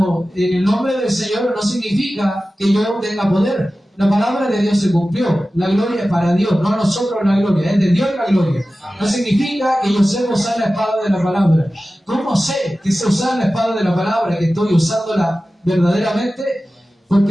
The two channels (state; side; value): normal; both; correlation 0.95